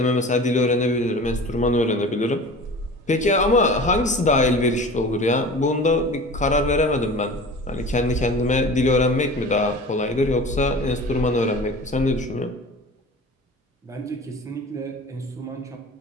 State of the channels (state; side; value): normal; both; correlation 0.38